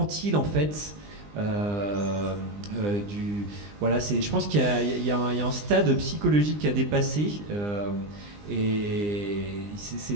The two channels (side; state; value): left; late; 20 ms